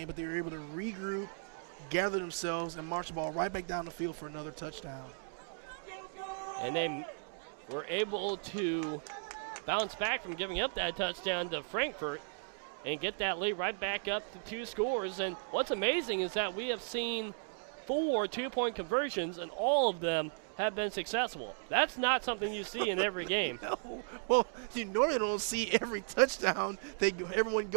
but they were able to regroup, gather themselves, and march the ball right back down the field for another touchdown. And they were able to bounce back from giving up that touchdown to Frankfurt and get that lead right back up to 2 scores. And what's amazing is that we have seen 4 2-point conversions, and all of them have been successful. That's not something you see in every game. No. Well, you normally don't see every touchdown. Everyone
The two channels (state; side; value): silent; left; digital silence